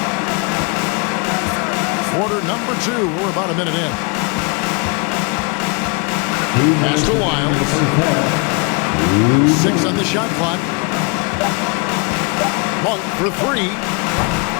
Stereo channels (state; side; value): quieter; right; 32.1 dB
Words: Quarter number 2. We're about a minute in. Pass to Wiles. 6 on the shot clock. Monk for 3.